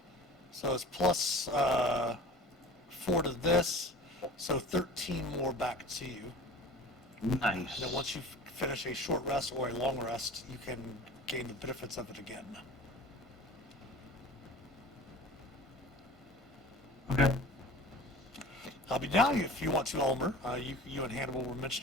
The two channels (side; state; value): both; normal; correlation 0.40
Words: So it's plus 4 to this, so 13 more back to you. Nice. And then once you finish a short rest or a long rest, you can gain the benefits of it again. Okay. But now, if you want to, Ulmer, you and Hannibal were